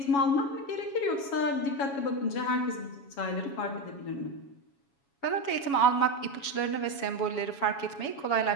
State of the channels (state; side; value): late; right; 7.2 ms